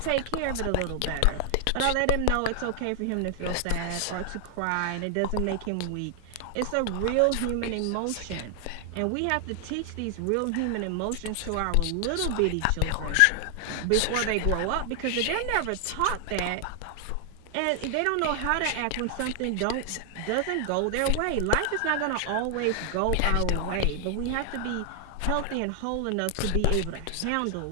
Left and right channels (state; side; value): different; both; correlation 0.00